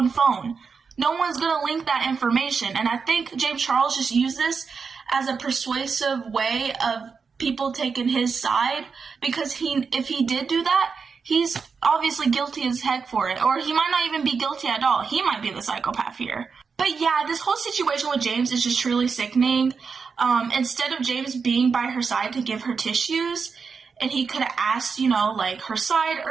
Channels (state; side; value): quieter; left; 5.4 dB